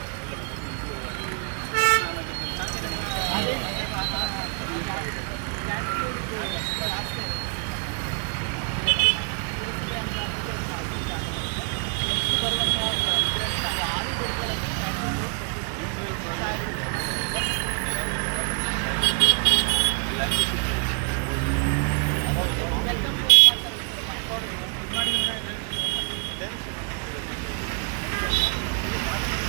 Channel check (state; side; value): quieter; left; 39.5 dB